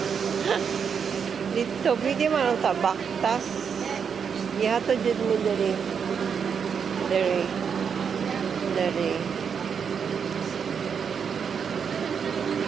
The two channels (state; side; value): quieter; left; 6.8 dB